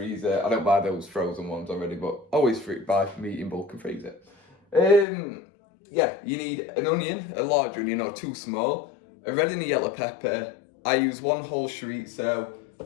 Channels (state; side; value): drops out; right; at 5.1 s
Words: I don't buy those frozen ones already, but always buy meat in bulk and freeze it. Yeah, you need an onion, a large onion or 2 small, a red and a yellow pepper. I use 1 whole chorizo,